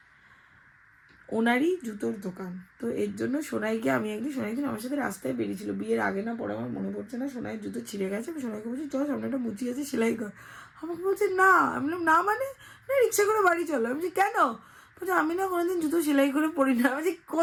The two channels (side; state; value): both; identical; correlation 1.00